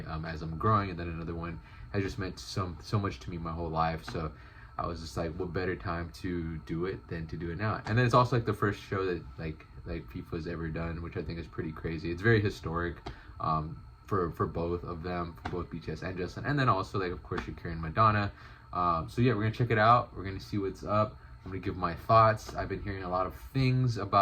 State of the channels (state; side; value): identical; both; correlation 1.00